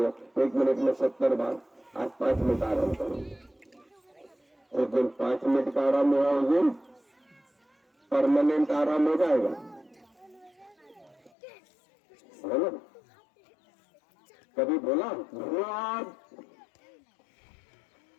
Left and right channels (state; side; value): drops out; right; at 11.3 s